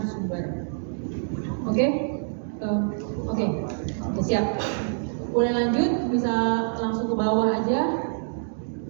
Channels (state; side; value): silent; left; digital silence